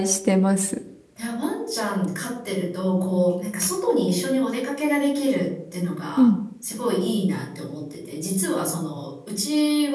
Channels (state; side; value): identical; both; correlation 1.00